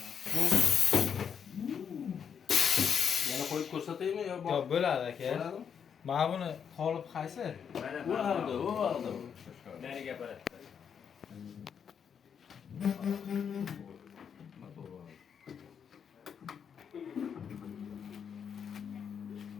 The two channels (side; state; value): right; quieter; 7.4 dB